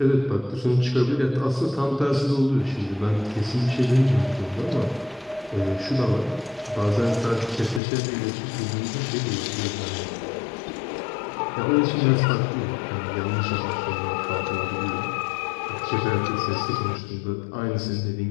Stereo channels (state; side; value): drops out; right; at 7.8 s